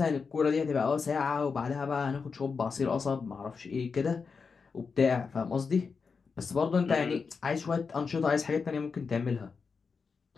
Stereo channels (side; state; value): right; quieter; 5.2 dB